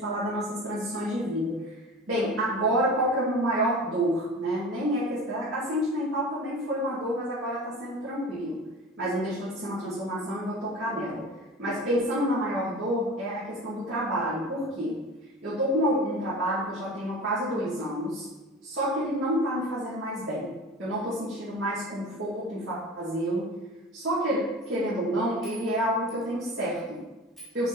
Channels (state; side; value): normal; both; correlation 0.36